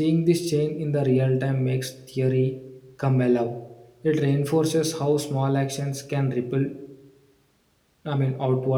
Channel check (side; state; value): both; identical; correlation 1.00